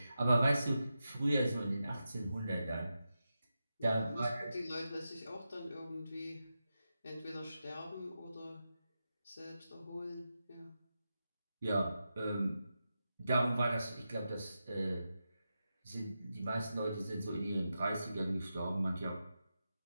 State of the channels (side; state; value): both; inverted; correlation -0.89